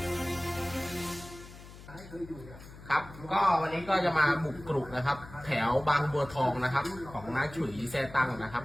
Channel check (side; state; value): left; noise; hum, 17 dB below the sound